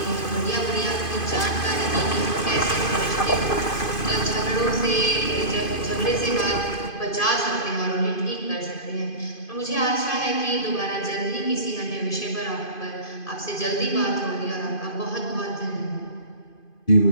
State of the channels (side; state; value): right; late; 2.5 ms